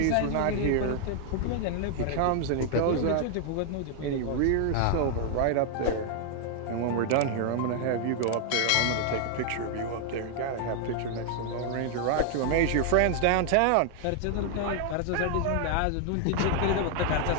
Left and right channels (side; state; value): both; different; correlation 0.00